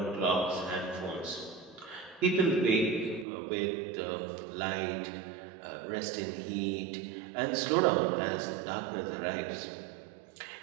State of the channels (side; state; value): left; drops out; at 3.2 s